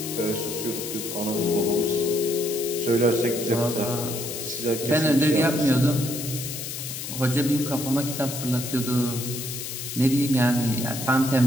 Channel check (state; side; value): noise; left; hiss, 7 dB below the sound